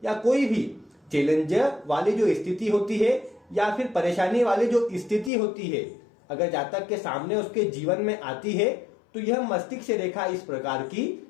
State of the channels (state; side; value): drops out; right; at 5.3 s